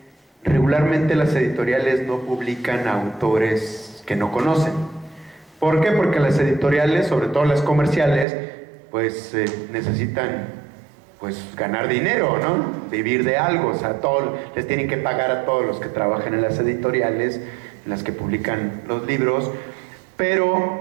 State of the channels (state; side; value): drops out; left; at 8.2 s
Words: regularmente las editoriales no publican autores que no conocen. ¿Por qué? Porque las editoriales, sobre todo las comerciales, pues necesitan pues ganar dinero, ¿no? Vivir de algo, o sea, les tienen que pagar a todos los que trabajan en las editoriales, en las que publican los libros.